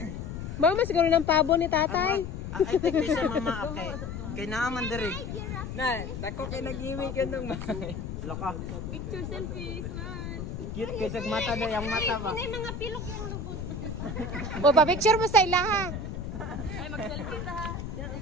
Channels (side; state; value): left; noise; rumble, 6 dB below the sound